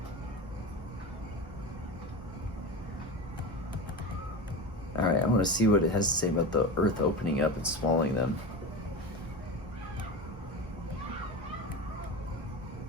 All right, I want to see what it has to say about the earth opening up and swallowing them.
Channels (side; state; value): both; normal; correlation 0.26